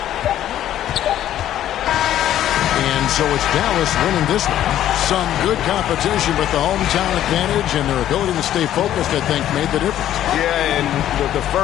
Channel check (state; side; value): quieter; right; 11.9 dB